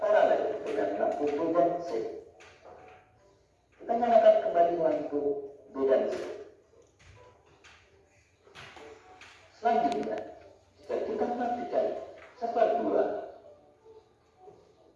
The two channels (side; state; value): both; identical; correlation 1.00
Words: dengan lampu B dan C. Kita nyalakan kembali lampu B dan C. Selanjutnya, jika kita matikan saklar 2,